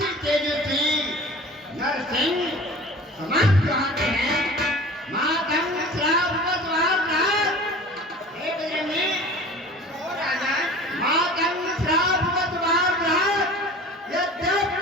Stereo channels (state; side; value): normal; both; correlation 0.41